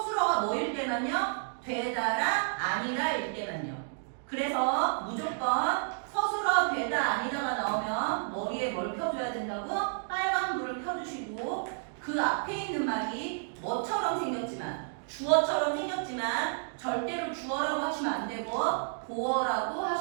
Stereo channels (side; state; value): left; silent; digital silence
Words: 뭐일 때만요? 되다라 아니라일 때만요. 그래서 무조건 서술어 되다 아니다가 나오면 머리에 뭘 펴줘야 된다고? 빨간 불을 펴주시고 그 앞에 있는 말이 뭐처럼 생겼지만 주어처럼 생겼지만 절대로 주어라고 하시면 안 되고 보어라고